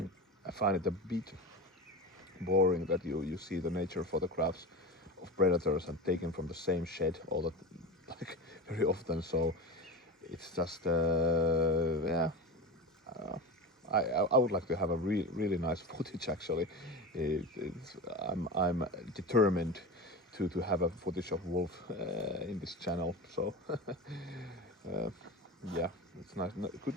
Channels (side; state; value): both; normal; correlation 0.25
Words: find it a bit boring that you see the nature photographs of predators and taken from the same shed all the like very often. So it's just yeah. Uh, I would like to have a really nice footage actually. I'm determined to have a footage of wolf in this channel. So yeah, it's nice,